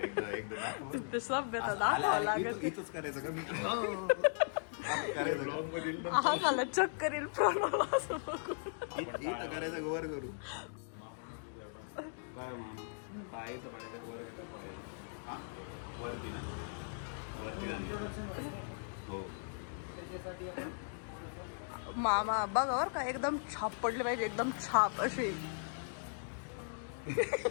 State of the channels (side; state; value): right; silent; digital silence